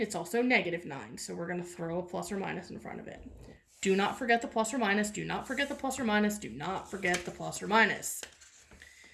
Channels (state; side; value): identical; both; correlation 1.00